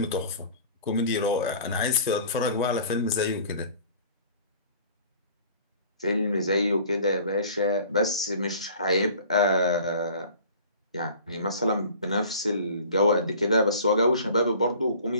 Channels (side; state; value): both; inverted; correlation -0.46